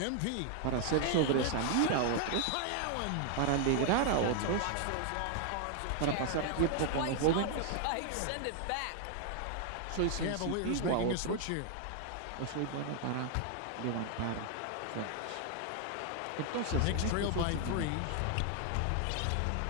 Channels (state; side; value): different; both; correlation 0.00